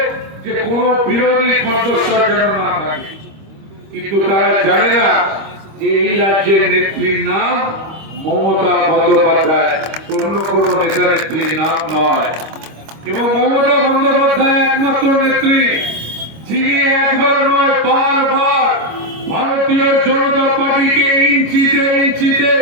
যে কোন বিরোধী কণ্ঠস্বর যেন না থাকে। কিন্তু তারা জানে না যে এই রাজ্যের নেত্রীর নাম মমতা বন্দ্যোপাধ্যায়, অন্য কোন নেতা নেত্রীর নাম নয়। এবং মমতা বন্দ্যোপাধ্যায় একমাত্র নেত্রী যিনি একবার নয় বারবার ভারতীয় জনতা পার্টিকে ইঞ্চিতে ইঞ্চিতে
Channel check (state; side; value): late; left; 26 ms